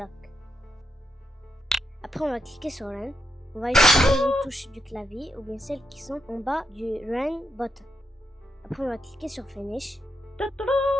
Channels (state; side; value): normal; both; correlation 0.82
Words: Après, on va cliquer sur Run. On va utiliser les touches du clavier ou bien celles qui sont en bas du Run button. Après, on va cliquer sur Finish.